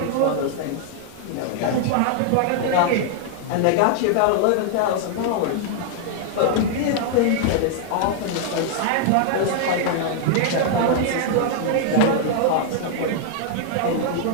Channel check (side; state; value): both; different; correlation -0.01